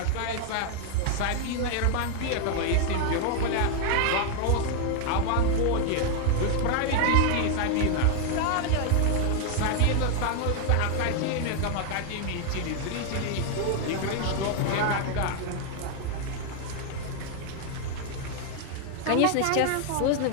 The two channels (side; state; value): both; different; correlation 0.00